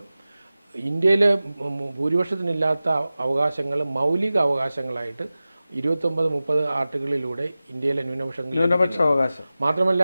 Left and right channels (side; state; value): both; inverted; correlation -0.96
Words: ഇന്ത്യയിലെ ഭൂരിപക്ഷത്തിനില്ലാത്ത അവകാശങ്ങൾ മൗലിക അവകാശങ്ങളായിട്ട് 29-30 ആർട്ടിക്കിളിലൂടെ ഇന്ത്യയിലെ ന്യൂനപക്ഷ അവകാശം മാത്രമല്ല